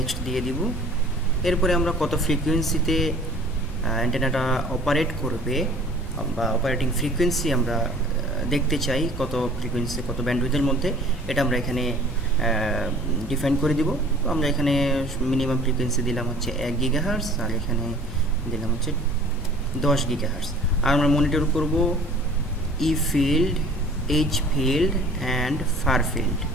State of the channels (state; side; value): normal; both; correlation 0.50